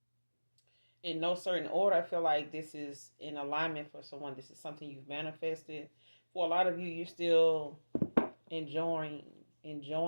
In no certain order, I feel like this is in alignment for someone. This is something you've manifested. For a lot of you, you're still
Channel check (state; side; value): inverted; both; correlation -1.00